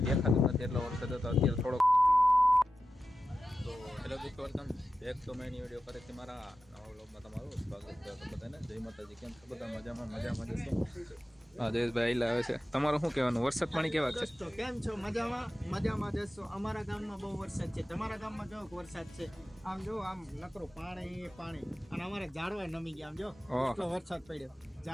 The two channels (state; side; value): normal; both; correlation 0.92